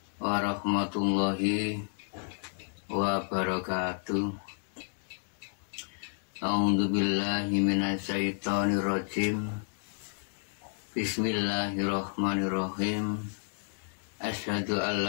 warahmatullahi wabarakatuh. A'udzubillahi minasyaitonirrajim. Bismillahirrahmanirrahim. Asyhadu an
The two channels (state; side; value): silent; right; 57 dB below the other